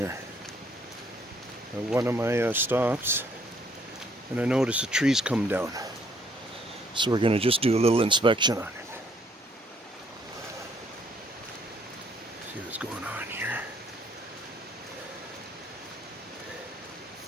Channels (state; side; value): normal; both; correlation 0.66